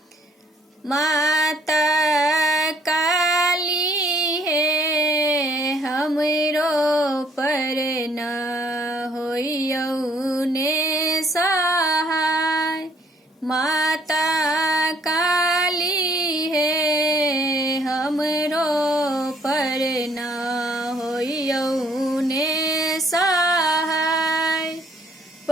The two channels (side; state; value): both; normal; correlation 0.63